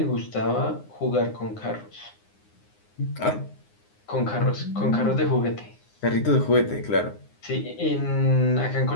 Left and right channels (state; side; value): late; right; 9.7 ms